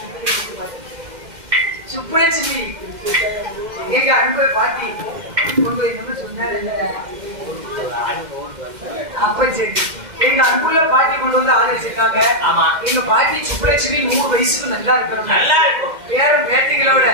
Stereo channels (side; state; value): left; late; 2.1 ms